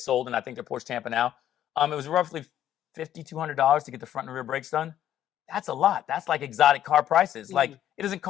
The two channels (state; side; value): quieter; right; 11.3 dB